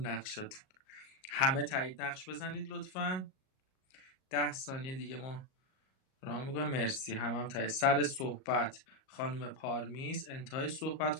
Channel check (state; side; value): late; right; 38 ms